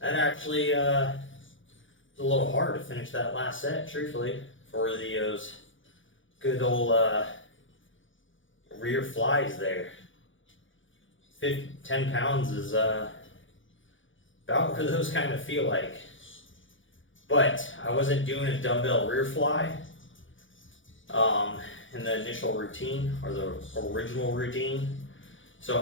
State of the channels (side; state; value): right; late; 0.56 ms